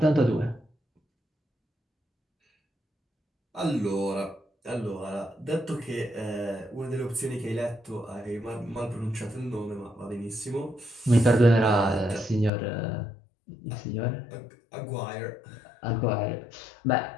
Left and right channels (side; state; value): right; drops out; at 12.5 s